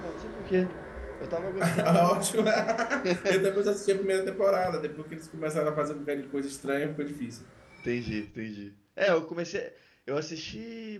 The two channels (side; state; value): both; identical; correlation 1.00